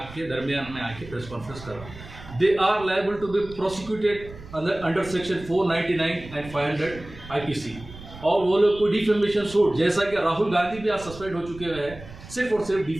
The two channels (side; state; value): right; noise; rumble, 16 dB below the sound